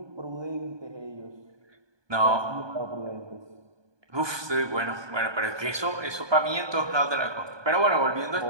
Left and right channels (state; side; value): late; left; 1.2 ms